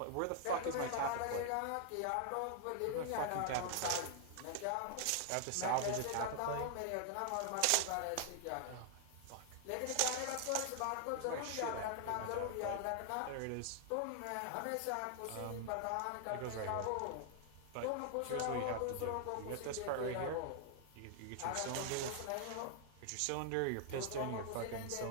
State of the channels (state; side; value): different; both; correlation 0.00